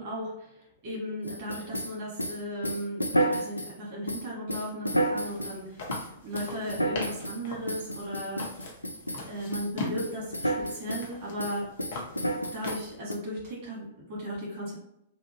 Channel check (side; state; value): both; inverted; correlation -0.66